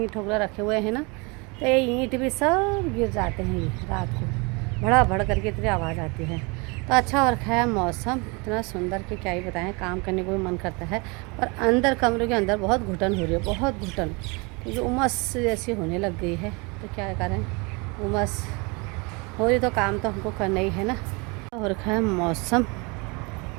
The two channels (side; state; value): left; quieter; 29.2 dB